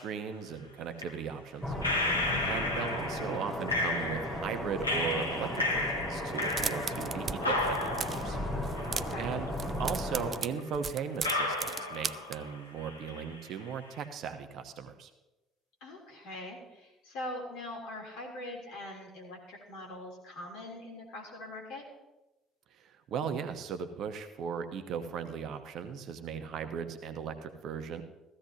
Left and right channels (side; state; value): both; normal; correlation 0.30